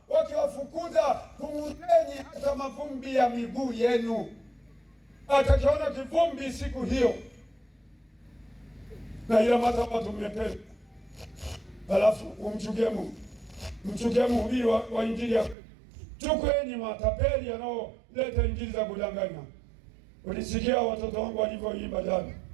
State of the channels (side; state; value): left; drops out; at 15.6 s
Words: wakiwafukuza, kung'uteni hata mavumbi ya miguu yenu. Atakiona kivumbi siku hiyo, na ila watu mmependa. Halafu umchukie Mungu, mchukie mhubiri wa injili ya chukueni matapeli yanaoleta injili za kudanganya. Ulisikia watoto wangu walivyoimba jana.